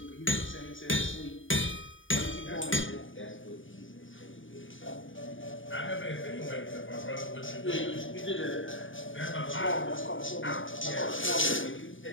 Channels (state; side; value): late; right; 0.57 ms